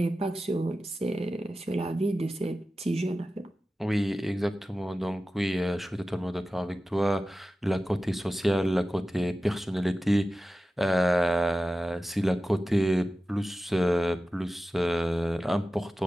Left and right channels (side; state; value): both; normal; correlation 0.94